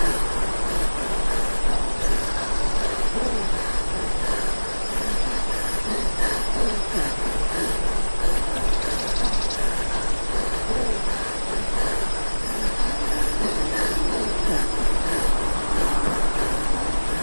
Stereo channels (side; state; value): both; inverted; correlation -1.00